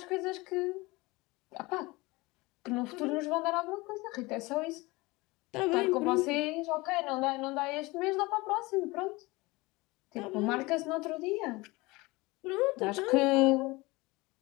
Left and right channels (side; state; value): right; quieter; 22.8 dB